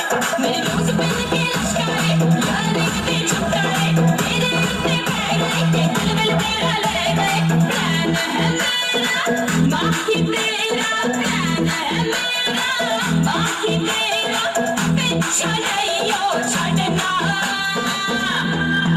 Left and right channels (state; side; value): identical; both; correlation 1.00